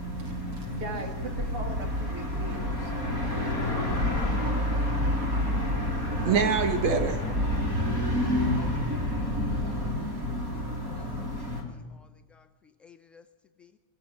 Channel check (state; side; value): late; left; 4.2 ms